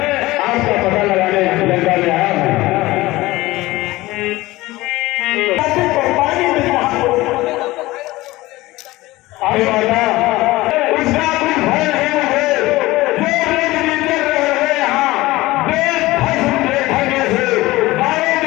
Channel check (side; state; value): right; quieter; 19.0 dB